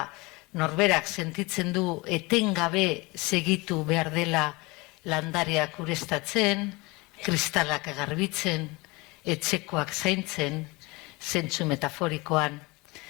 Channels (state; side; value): quieter; right; 24.6 dB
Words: norberak sentitzen du etengabe segitu behar dela landareak ureztatzen, kristalak garbitzen, etxekoak zaintzen, zentzu metaforikoan.